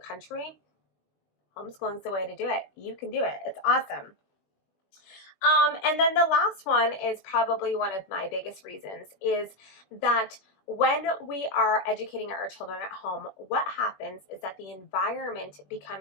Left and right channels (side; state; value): right; late; 21 ms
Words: homeschooling's the way to do it. You can do it. It's awesome. And then the last one is probably one of my biggest reasons, is that when we are educating our children at home, what happens is that the environment